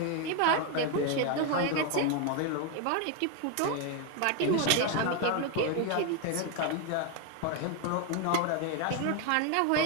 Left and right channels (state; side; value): different; both; correlation 0.01